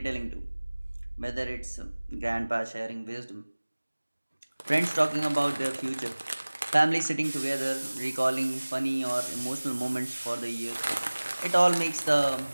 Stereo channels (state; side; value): inverted; both; correlation -1.00